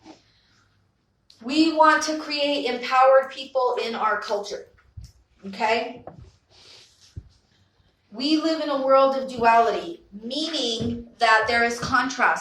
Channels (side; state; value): both; identical; correlation 1.00